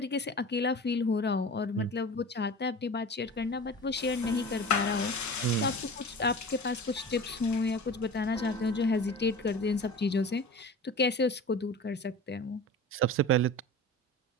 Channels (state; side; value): normal; both; correlation 0.35